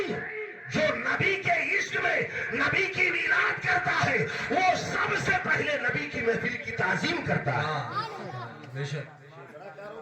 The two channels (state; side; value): identical; both; correlation 1.00